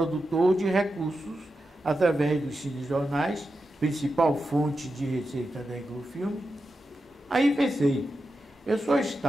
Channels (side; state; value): both; normal; correlation 0.89